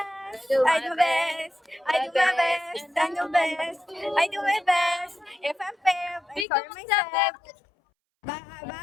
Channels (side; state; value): right; drops out; at 6.5 s